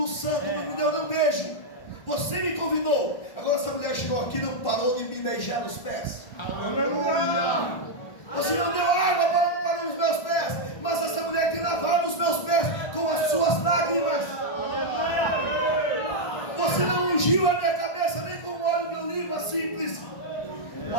santo, não me deu nem um beijo. Você me convidou. Agora essa mulher chegou aqui e não parou de me beijar nos pés. Aleluia. Você não deu água para os meus pés, mas essa mulher tem lavado os meus pés com as suas lágrimas. Você não ungiu a minha cabeça nem com óleo de oliva simples,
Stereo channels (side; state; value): right; late; 1.4 ms